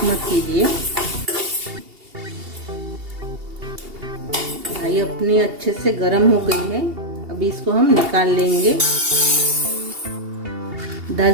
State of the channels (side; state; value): left; late; 2.8 ms